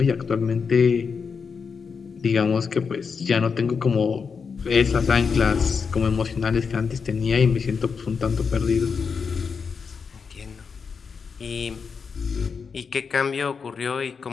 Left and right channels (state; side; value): quieter; right; 5.7 dB